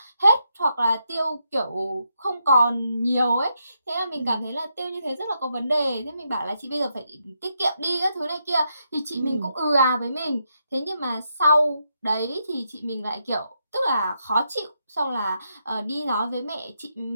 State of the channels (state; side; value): inverted; both; correlation -0.81